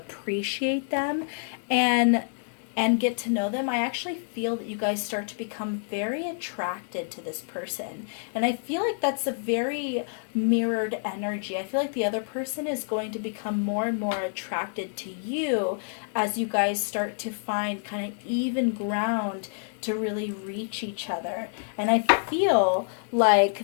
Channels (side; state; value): right; silent; 60 dB below the other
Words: them and get to know them, I actually feel that you guys start to become very attracted to this person. And I feel like that's a very mirrored energy. I feel like the other person is going to become more and more attracted to you as you guys start to find kind of even ground to really reach each other. And I feel